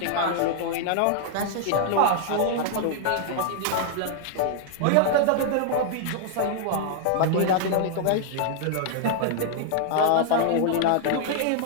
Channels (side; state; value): both; different; correlation 0.00